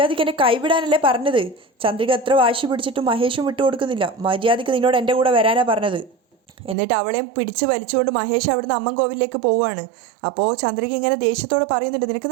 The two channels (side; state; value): left; drops out; at 6.8 s